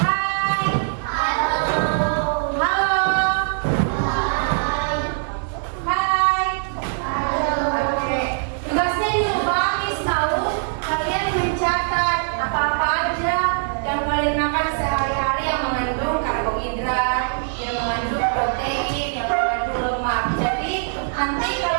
Yang mengandung protein, yang mengandung lemak. Jadi nanti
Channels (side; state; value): left; silent; 62 dB below the other